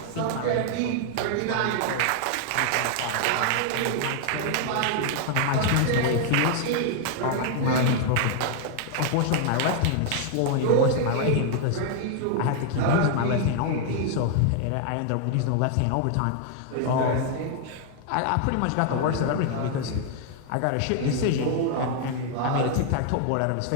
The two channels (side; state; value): both; different; correlation 0.00